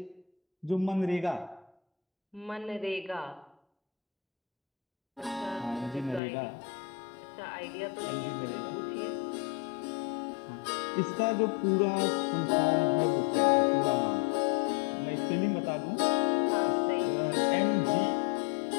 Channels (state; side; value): drops out; right; at 6.2 s